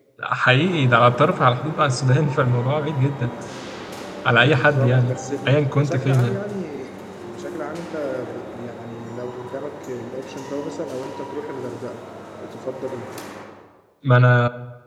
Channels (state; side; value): identical; both; correlation 1.00